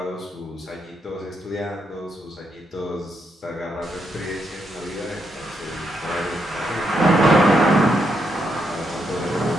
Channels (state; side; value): normal; both; correlation 0.80